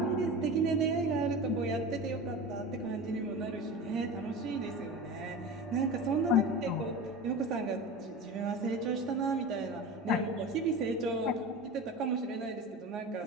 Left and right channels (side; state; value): both; normal; correlation 0.30